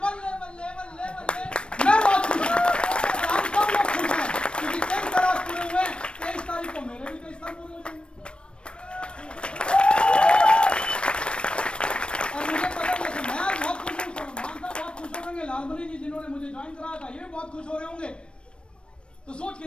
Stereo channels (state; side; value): late; right; 0.057 ms